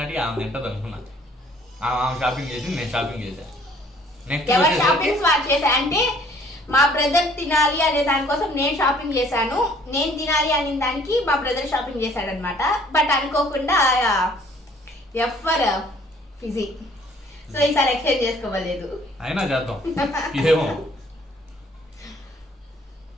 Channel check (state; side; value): normal; both; correlation 0.58